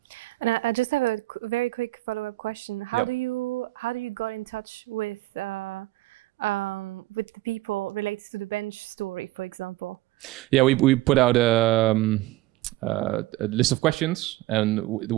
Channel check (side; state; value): left; quieter; 18.0 dB